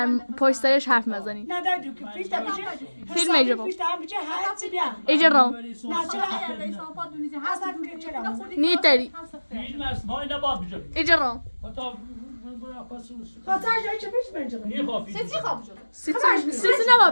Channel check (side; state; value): both; inverted; correlation -1.00